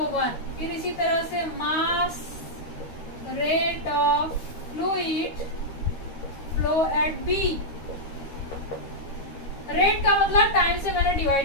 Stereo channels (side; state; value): right; late; 13 ms